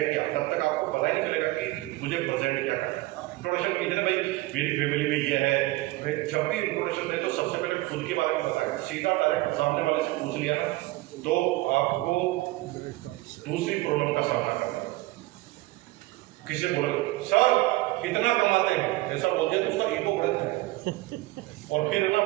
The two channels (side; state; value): left; quieter; 19.6 dB